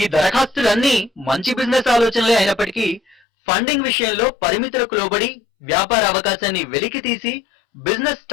దరఖాస్తులన్నీ మంచి బిజినెస్ ఆలోచనలే అయినప్పటికీ ఫండింగ్ విషయంలో పరిమితులకు లోబడి వ్యాపార అవకాశాన్ని వెలికి తీసి బిజినెస్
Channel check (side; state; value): right; drops out; at 3.2 s